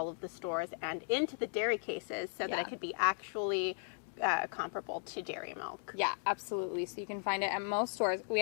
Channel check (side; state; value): right; silent; digital silence